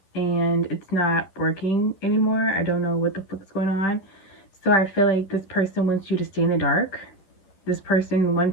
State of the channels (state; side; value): late; right; 11 ms